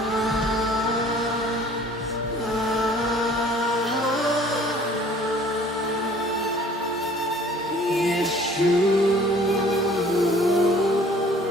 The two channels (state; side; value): normal; both; correlation 0.52